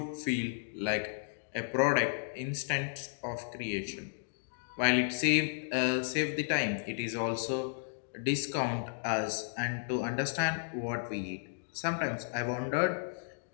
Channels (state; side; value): silent; right; digital silence